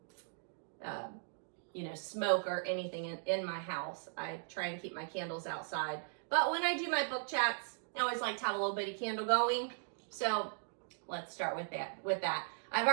smoke or anything in my house. I try and keep my candles outside. But when I do my book chats, I always like to have a little bitty candle going. So let's start with that. I've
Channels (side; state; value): left; silent; digital silence